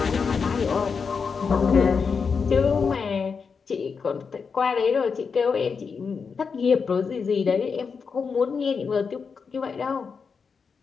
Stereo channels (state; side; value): quieter; right; 5.6 dB